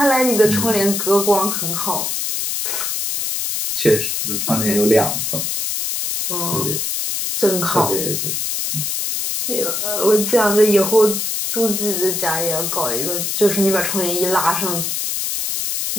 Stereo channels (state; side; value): noise; left; hiss, 1 dB below the sound